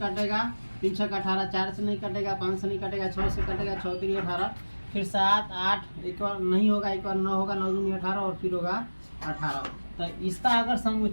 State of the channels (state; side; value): inverted; both; correlation -1.00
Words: 3 6 18, 4 से नहीं कटेगा, 5 से नहीं कटेगा, 6 से कटेगा, 6 3 18, फिर 7 8, एक बार नहीं होगा, एक बार 9 होगा, 9 दूनी 18, और फिर होगा 18। तो इसका अगर